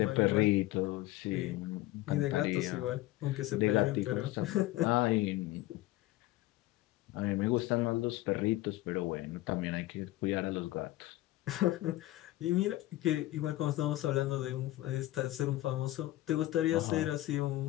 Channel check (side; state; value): right; quieter; 16.6 dB